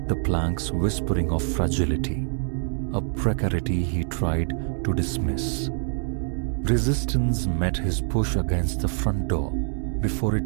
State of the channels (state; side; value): silent; left; digital silence